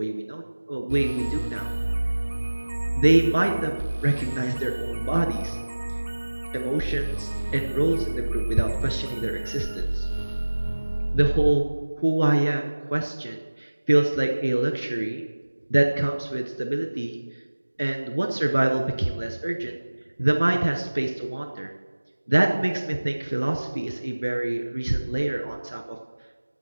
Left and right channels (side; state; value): both; inverted; correlation -1.00